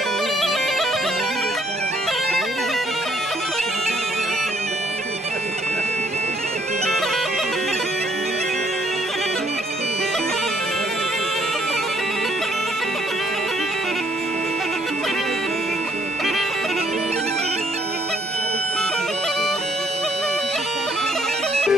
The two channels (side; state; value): both; normal; correlation 0.67